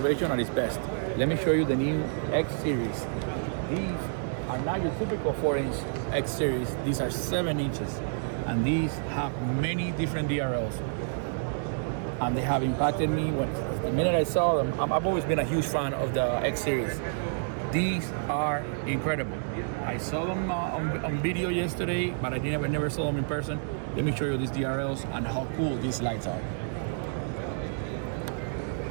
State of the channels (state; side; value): silent; left; digital silence